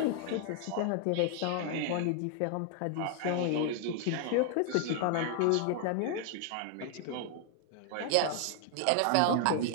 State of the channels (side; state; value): both; different; correlation 0.00